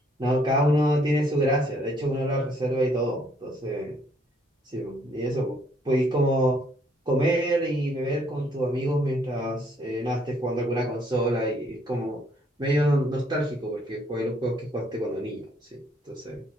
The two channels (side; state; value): both; normal; correlation 0.67